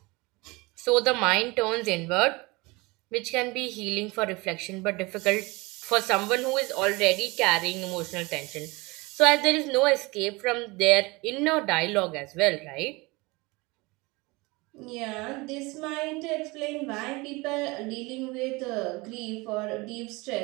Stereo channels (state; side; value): quieter; left; 24.5 dB